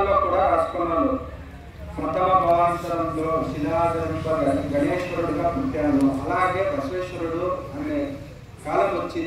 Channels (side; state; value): both; identical; correlation 1.00